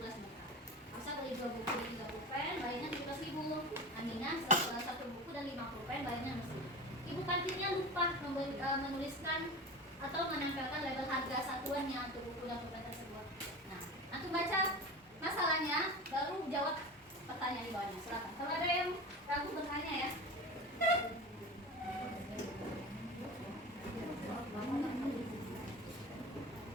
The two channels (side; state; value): both; normal; correlation 0.30